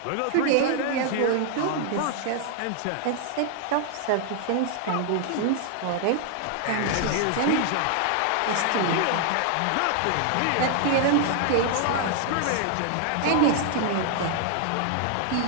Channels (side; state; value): both; different; correlation 0.00